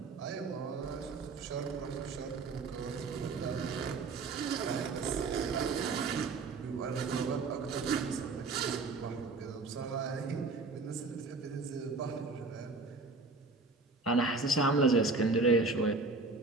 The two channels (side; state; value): left; quieter; 3.8 dB